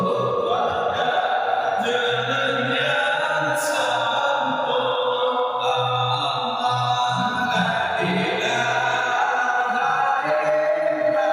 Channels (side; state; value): both; identical; correlation 1.00